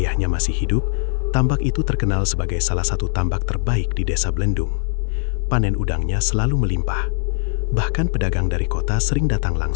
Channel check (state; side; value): silent; right; 65 dB below the other